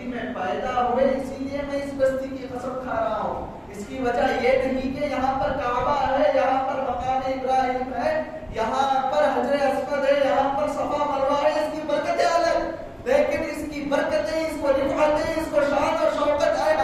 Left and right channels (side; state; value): both; identical; correlation 1.00